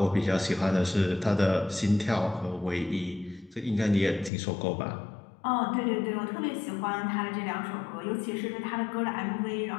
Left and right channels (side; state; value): right; drops out; at 4.3 s